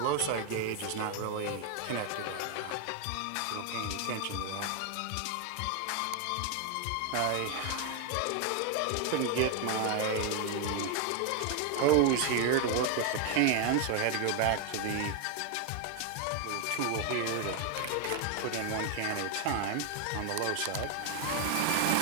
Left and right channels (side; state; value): both; different; correlation 0.01